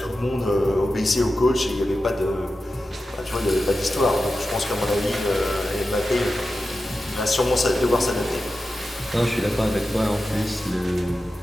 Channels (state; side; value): normal; both; correlation 0.92